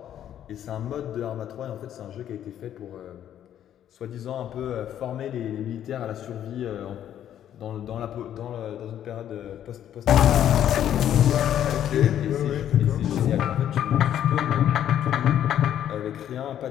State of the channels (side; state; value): right; quieter; 10.6 dB